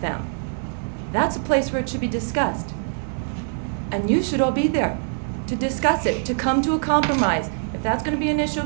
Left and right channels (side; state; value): left; silent; 61 dB below the other